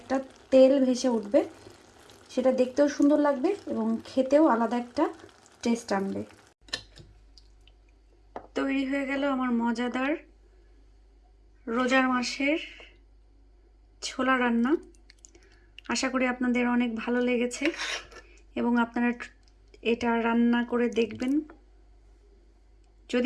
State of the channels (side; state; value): both; identical; correlation 1.00